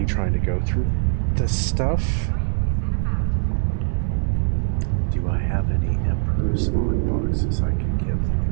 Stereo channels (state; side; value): silent; left; digital silence